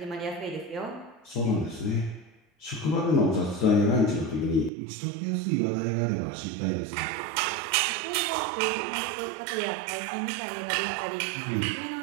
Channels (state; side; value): drops out; left; at 4.7 s